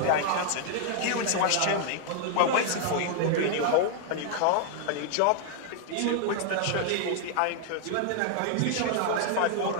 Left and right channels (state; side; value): different; both; correlation 0.00